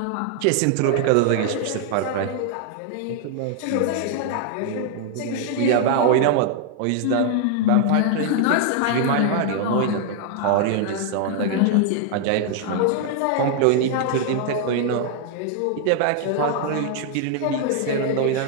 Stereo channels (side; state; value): both; different; correlation 0.00